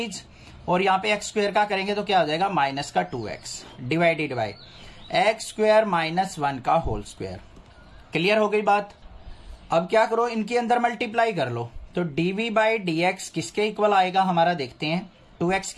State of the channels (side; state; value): both; identical; correlation 1.00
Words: और यहां पे एक्स स्क्वायर का करेंगे तो क्या हो जाएगा माइनस का 2x divided by x square minus 1 का होल स्क्वायर। क्लियर हो गई बात। अब क्या करो, इनके अंदर मल्टीप्लाई कर लो, तो dv बाई डी एक्स किसके इक्वल आएगा हमारा, देखते हैं। 2x